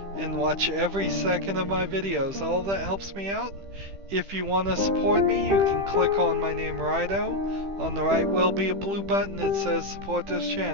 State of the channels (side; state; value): left; late; 15 ms